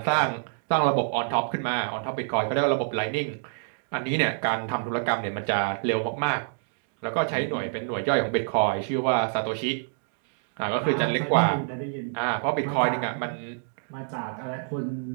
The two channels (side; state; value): left; silent; digital silence